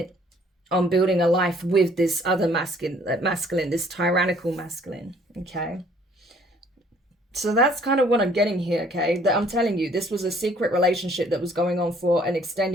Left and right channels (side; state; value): both; normal; correlation 0.59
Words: on building a life with this other masculine, this tyrannical masculine, okay? So that's kind of what I'm getting here, okay? That I'm telling you, this was a secret relationship that was going on for an